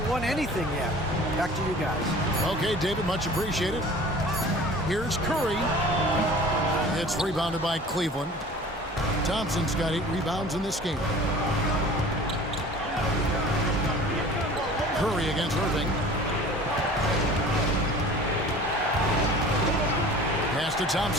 won anything yet. Back to you guys. Okay, David, much appreciated. Here's Curry. It's rebounded by Cleveland. Thompson's got 8 rebounds in this game. Curry against Irving. Pass to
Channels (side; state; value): both; normal; correlation 0.43